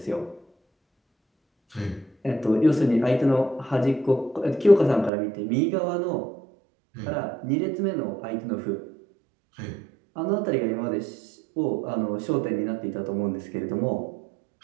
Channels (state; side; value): drops out; left; at 5.1 s